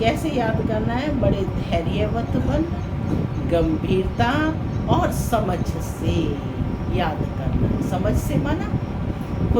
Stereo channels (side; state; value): both; identical; correlation 1.00